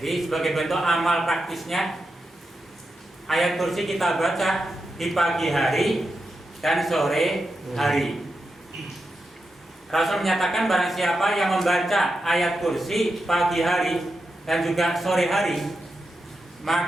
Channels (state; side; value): normal; both; correlation 0.88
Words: sebagai bentuk amal praktisnya, ayat kursi kita baca di pagi hari dan sore hari. Rasul menyatakan barang siapa yang membaca ayat kursi pagi hari dan juga sore hari,